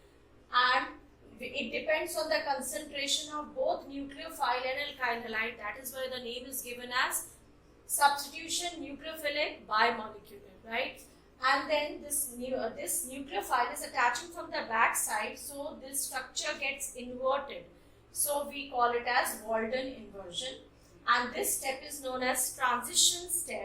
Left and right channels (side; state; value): both; identical; correlation 1.00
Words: and it depends on the concentration of both nucleophile and alkyl halide. That is why the name is given as substitution nucleophilic bimolecular, right? And then this nucleophile is attaching from the back side, so this structure gets inverted. So we call it as Walden inversion, and this step is known as transition